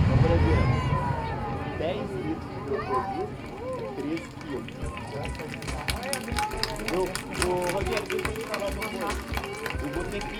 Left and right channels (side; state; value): both; identical; correlation 1.00